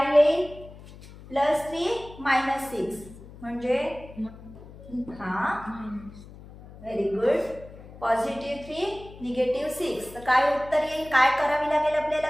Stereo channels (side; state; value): left; noise; hum, 18 dB below the sound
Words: येईल प्लस 3 मायनस 6 म्हणजे हा व्हेरी गुड. Positive 3 negative 6. तर काय उत्तर येईल, काय करावी लागेल आपल्याला,